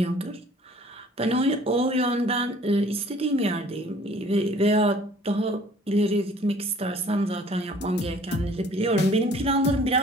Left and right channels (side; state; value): both; normal; correlation 0.54